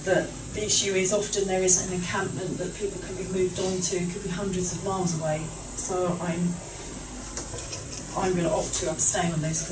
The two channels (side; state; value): both; identical; correlation 1.00